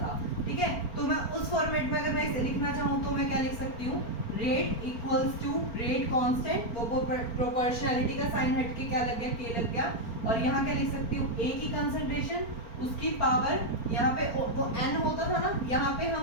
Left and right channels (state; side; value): late; right; 4.4 ms